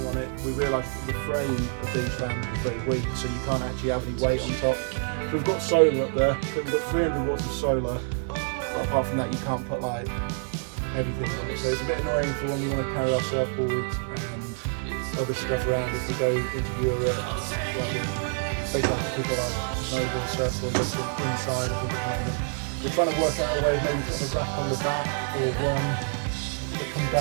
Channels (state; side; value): silent; left; 60 dB below the other